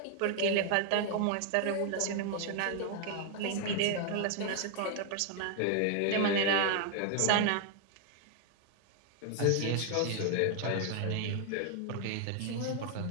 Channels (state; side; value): different; both; correlation 0.00